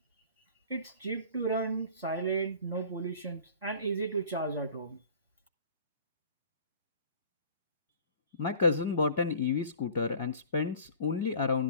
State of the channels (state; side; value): inverted; both; correlation -0.46